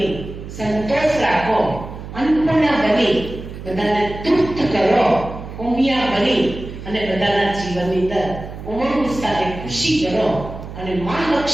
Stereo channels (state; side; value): noise; right; hum, 11 dB below the sound